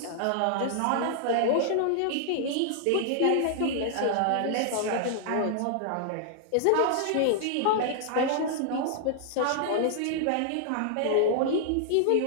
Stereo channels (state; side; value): different; both; correlation -0.01